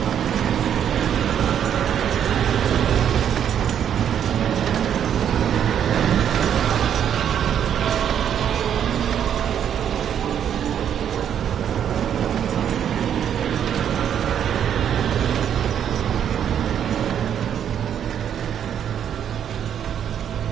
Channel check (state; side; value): quieter; left; 9.1 dB